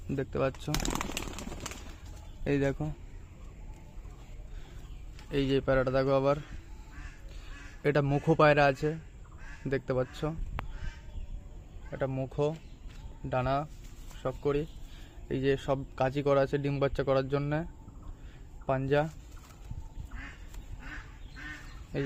দেখতে পাচ্ছ। এই দেখো এই যে পায়রাটা দেখো আবার। এটা মুখো পায়রা আছে, দেখতে পাচ্ছ। এটা মুখো, ডানা সব করি। এই যে সব কাঁচি করা আছে ডিম বাচ্চা করার জন্য। পাঞ্জা, এই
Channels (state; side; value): identical; both; correlation 1.00